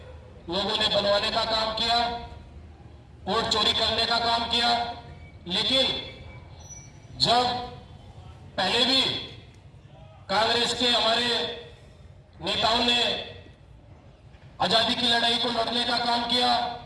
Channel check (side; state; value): both; identical; correlation 1.00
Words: लोगों ने बनवाने का काम किया, वोट चोरी करने का काम किया। लेकिन जब पहले भी कांग्रेस के हमारे नेताओं ने आजादी की लड़ाई को लड़ने का काम किया,